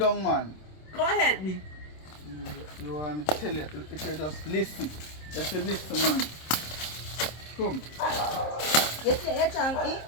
man. Come help me. You want me to tell you, if you just listen. Just listen, man. Come. You say you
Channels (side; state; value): right; late; 26 ms